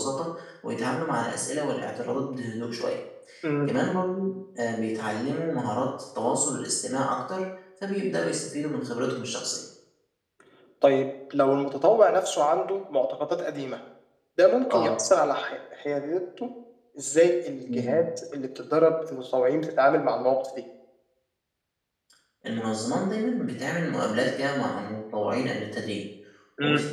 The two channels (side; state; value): both; identical; correlation 1.00